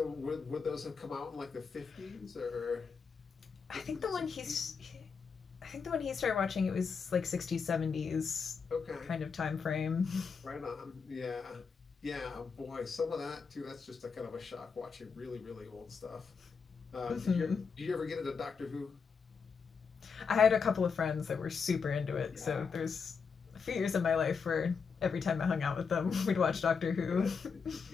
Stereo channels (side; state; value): right; quieter; 5.6 dB